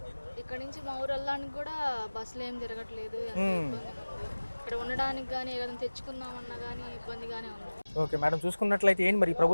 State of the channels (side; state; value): both; inverted; correlation -1.00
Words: ఇక్కడ నుంచి మా ఊరు వెళ్ళడానికి కూడా బస్సులు ఏం తిరగట్లేదు, ఎంతో ఇబ్బందిగా ఉంది. ఇక్కడ ఉండడానికి కానీ ఏదైనా తెచ్చుకుందామన్నా కానీ ఇబ్బందిగానే ఉంది. ఓకే మేడం, చూసుకున్నట్లయితే ఏంటి మరి